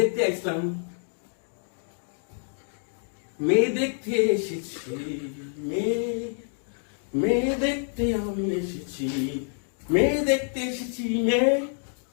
আসলাম, মেয়ে দেখতে এসেছি, মেয়ে দেখতে আমি এসেছি, মেয়ে দেখতে এসেছি,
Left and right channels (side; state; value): right; silent; 56 dB below the other